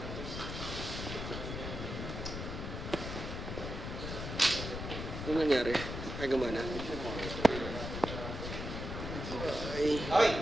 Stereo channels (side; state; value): left; noise; rumble, 6 dB below the sound